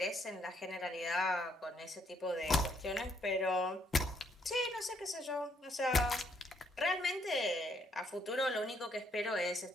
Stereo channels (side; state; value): both; normal; correlation 0.71